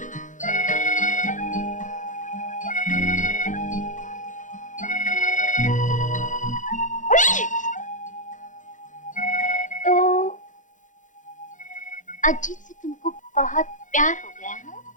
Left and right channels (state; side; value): late; right; 0.37 ms